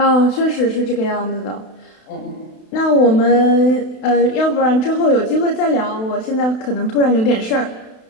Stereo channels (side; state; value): right; late; 32 ms